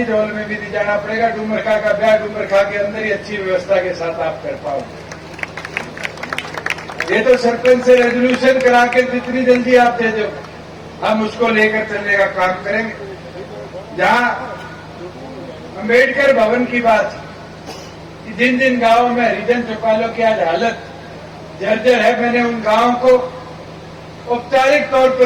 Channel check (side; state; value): both; identical; correlation 1.00